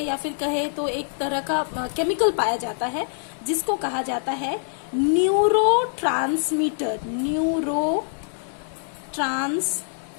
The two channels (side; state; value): right; silent; 62 dB below the other